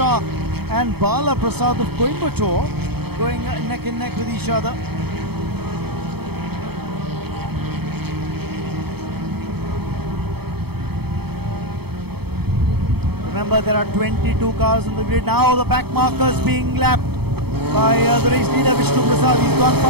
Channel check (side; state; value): left; late; 0.97 ms